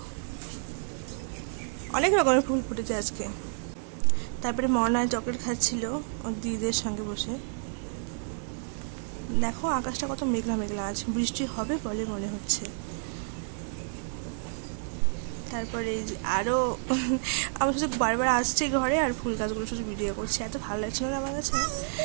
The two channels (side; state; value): left; silent; digital silence